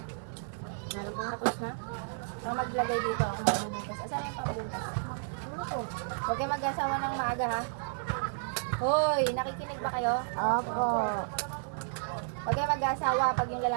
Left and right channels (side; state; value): left; silent; 56 dB below the other